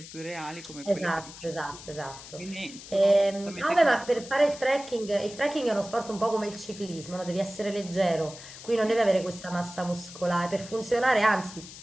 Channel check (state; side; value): noise; left; hiss, 15 dB below the sound